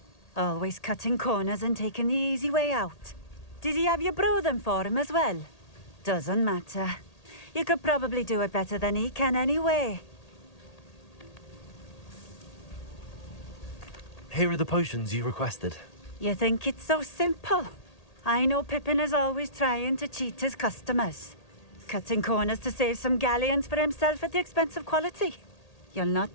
Always cutting corners and taking the easy way out. Did he have you brew them for him as well? Doesn't matter. You could probably do it better than he can anyway. Here are the potions you requested. You think it's so simple? I know Pippin is always trying to cheat his customers. Cutting corners to save some galleons for himself at the expense of quality. You'll not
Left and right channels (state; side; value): late; right; 1.8 ms